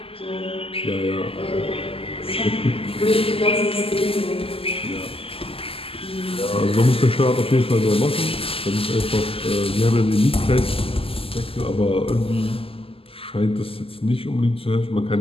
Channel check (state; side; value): late; right; 0.27 ms